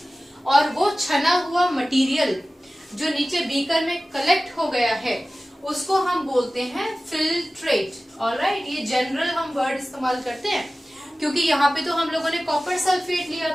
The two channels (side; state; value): both; normal; correlation 0.96